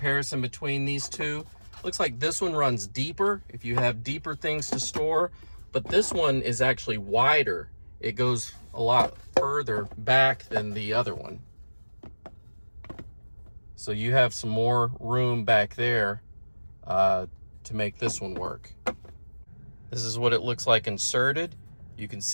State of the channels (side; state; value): both; inverted; correlation -1.00